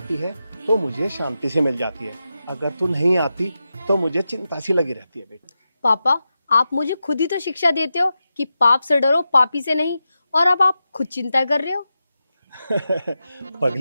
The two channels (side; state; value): both; inverted; correlation -0.90